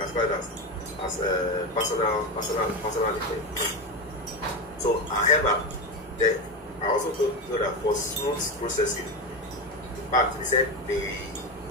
as personal effect. So, however, I also know that for smooth processing, in fact, they said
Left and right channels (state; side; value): normal; both; correlation 0.16